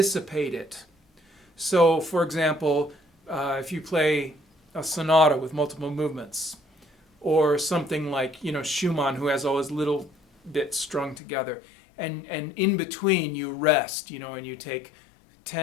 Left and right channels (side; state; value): right; drops out; at 11.2 s